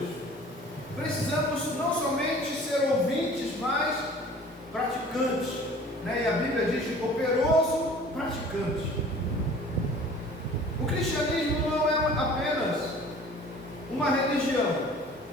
Precisamos não somente ser ouvintes, mas praticantes, né? E a Bíblia diz operoso praticante. O cristianismo não é apenas uma religião,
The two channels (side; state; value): both; normal; correlation 0.47